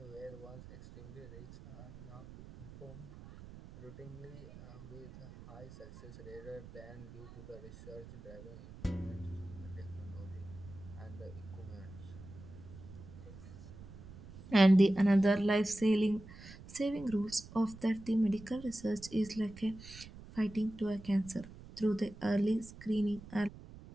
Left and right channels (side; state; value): right; noise; rumble, 16 dB below the sound